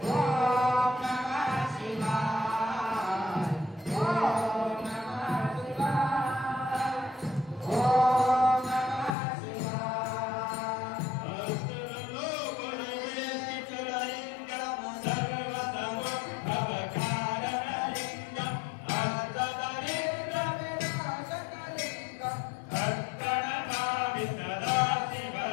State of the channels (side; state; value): right; drops out; at 9.2 s